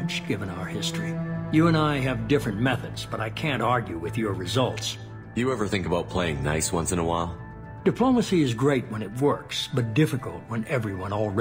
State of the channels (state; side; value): identical; both; correlation 1.00